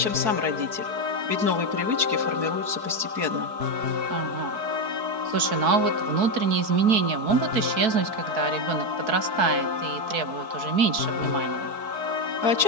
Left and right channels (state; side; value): late; left; 4.6 ms